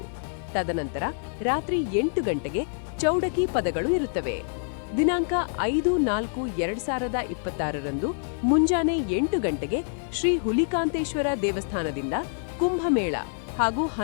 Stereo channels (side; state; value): right; silent; digital silence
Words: ತದನಂತರ ರಾತ್ರಿ 8 ಗಂಟೆಗೆ ಚೌಡಕಿ ಪದಗಳು ಇರುತ್ತವೆ. ದಿನಾಂಕ 5/4/2026 ಮುಂಜಾನೆ 8 ಗಂಟೆಗೆ ಶ್ರೀ ಹುಲಿಕಾಂತೇಶ್ವರ ದೇವಸ್ಥಾನದಿಂದ ಕುಂಭಮೇಳ ಹಾಗೂ